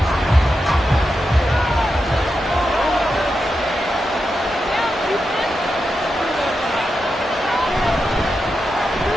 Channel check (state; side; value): normal; both; correlation 0.88